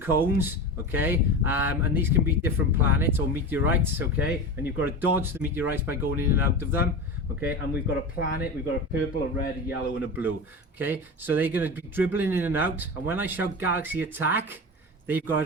okay, and these can be different planets or meteorites, okay, and you've got to dodge the meteorites by going in and out of them, okay, and we've got a planet, we've got a purple, a red, a yellow and a blue, okay, so they're going to be dribbling in and out, and when I shout galaxy attack, they've got to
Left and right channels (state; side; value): normal; both; correlation 0.27